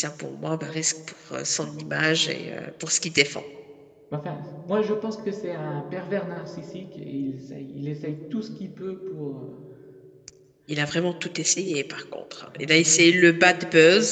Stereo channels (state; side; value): identical; both; correlation 1.00